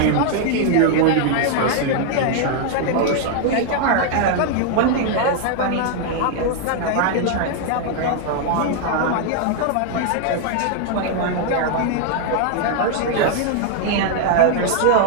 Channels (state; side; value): different; both; correlation 0.00